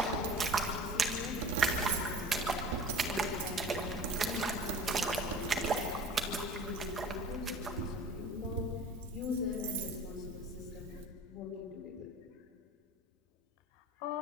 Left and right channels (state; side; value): normal; both; correlation 0.40